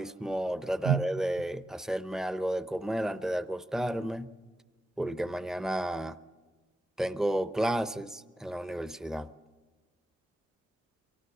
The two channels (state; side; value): normal; both; correlation 0.88